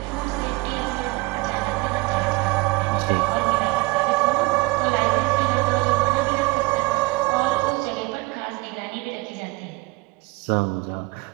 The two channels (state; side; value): quieter; left; 24.3 dB